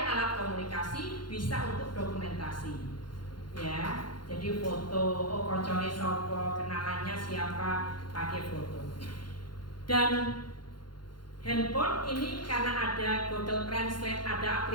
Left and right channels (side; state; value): right; late; 0.71 ms